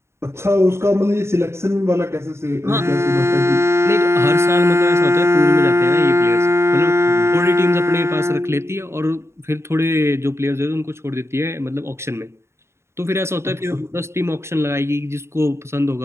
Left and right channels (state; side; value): late; left; 0.13 ms